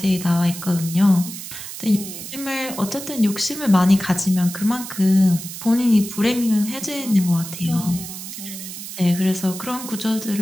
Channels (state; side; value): noise; right; hiss, 10 dB below the sound